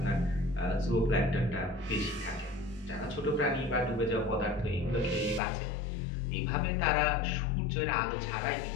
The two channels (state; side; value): drops out; right; at 5.4 s